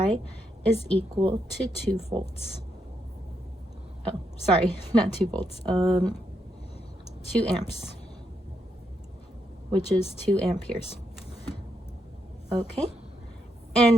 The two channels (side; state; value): both; normal; correlation 0.80